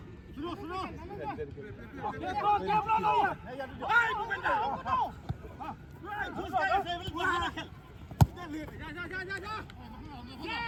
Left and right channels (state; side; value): identical; both; correlation 1.00